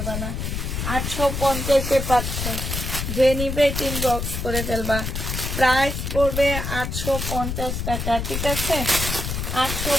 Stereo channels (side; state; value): left; noise; rumble, 3 dB below the sound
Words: না। 850-এ পাচ্ছ। যে নিবে ইনবক্স করে ফেলবা। প্রাইস পড়বে 850 টাকা। ঠিক আছে,